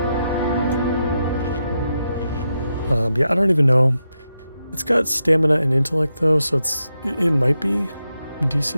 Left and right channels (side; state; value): both; inverted; correlation -0.86